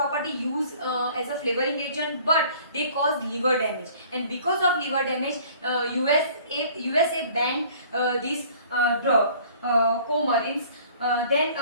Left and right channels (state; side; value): inverted; both; correlation -0.52